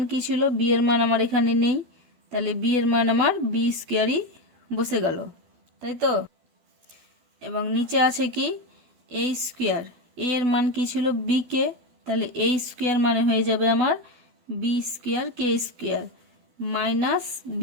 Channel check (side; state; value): left; late; 12 ms